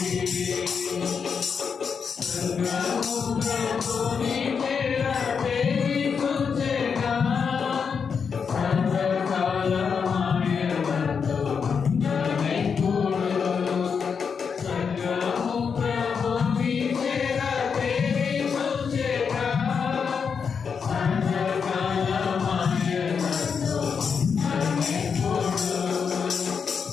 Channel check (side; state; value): right; quieter; 6.2 dB